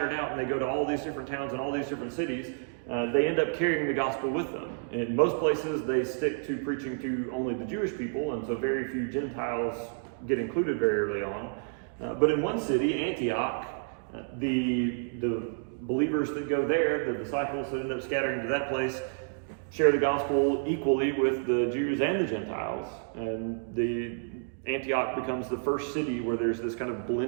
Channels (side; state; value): left; silent; digital silence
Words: out and they go to all these different towns and all these different cities, they end up carrying the gospel with them. In most places, they stick to preaching to only the Jewish people, and so very few Gentiles get included very early on. But in one city, Antioch, the believers that go there, the disciples that end up scattering to that place, share the gospel equally with the Jews and the Gentiles. And the Antioch becomes the first city where there's this kind of